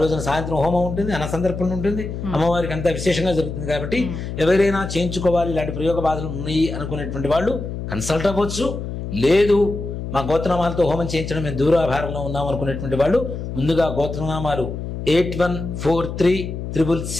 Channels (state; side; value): noise; left; hum, 6 dB below the sound